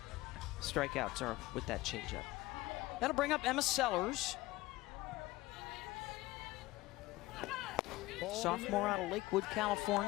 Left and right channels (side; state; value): right; quieter; 18.9 dB